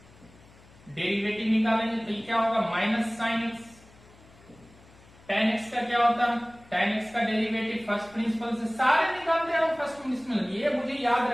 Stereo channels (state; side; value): noise; left; hum, 25 dB below the sound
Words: डेरिवेटिव निकालेंगे तो क्या होगा, minus sine x. Ten x का क्या होता है, टेन एक्स का डेरिवेटिव फर्स्ट प्रिंसिपल से सारे निकालते हैं फर्स्ट प्रिंसिपल, ये मुझे याद